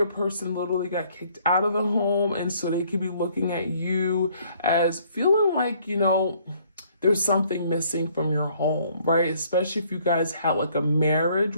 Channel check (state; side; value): inverted; both; correlation -0.63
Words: person literally got kicked out of the home, and so they could be looking at you as feeling like, you know, there's something missing from your home, right? Especially if you guys had like a marriage